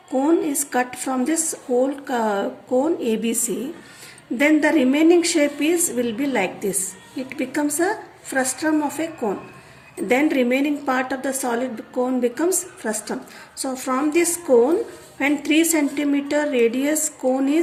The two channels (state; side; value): identical; both; correlation 1.00